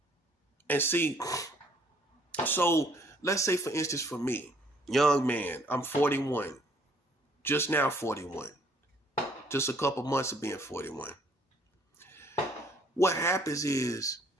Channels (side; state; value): both; normal; correlation 0.62